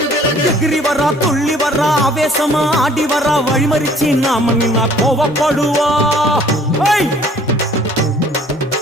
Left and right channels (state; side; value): normal; both; correlation 0.55